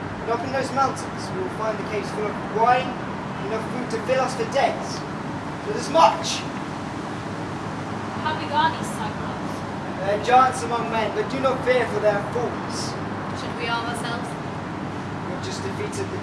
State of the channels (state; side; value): identical; both; correlation 1.00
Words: And up in those mountains, we will find the caves full of wine, enough food to fill us for days. So there's much. How big are these Cyclops? They are giants among men, but do not fear, for they are fools. Should we arm ourselves? We've just defeated the